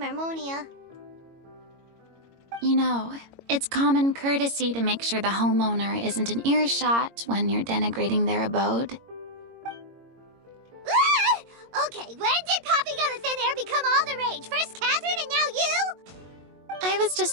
You know, it's common courtesy to make sure the homeowner isn't in earshot when you're denigrating their abode. Ah! Okay, when did popping out of thin air become all the rage? First Catherine and now you? I was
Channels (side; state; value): left; late; 22 ms